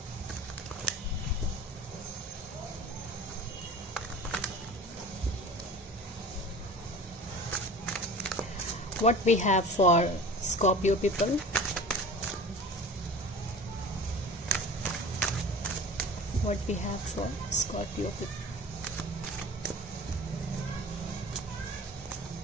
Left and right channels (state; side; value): normal; both; correlation 0.39